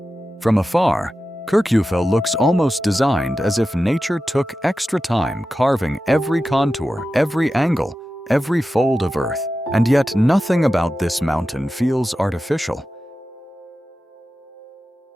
From afar, Kirkjufell looks almost designed as if nature took extra time carving every contour, every angle, every fold of earth, and yet nothing about this mountain feels artificial.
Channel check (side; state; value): both; normal; correlation 0.93